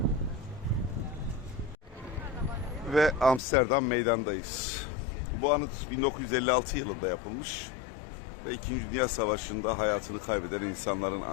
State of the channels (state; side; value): drops out; right; at 3.4 s